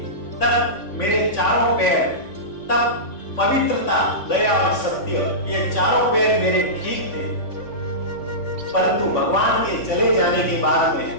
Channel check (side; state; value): right; late; 3.5 ms